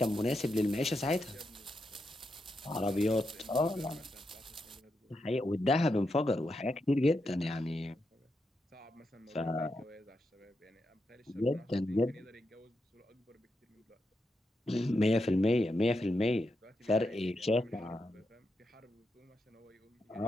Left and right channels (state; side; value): normal; both; correlation 0.85